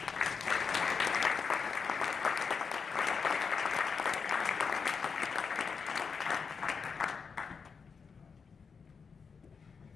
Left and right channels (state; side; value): quieter; right; 5.6 dB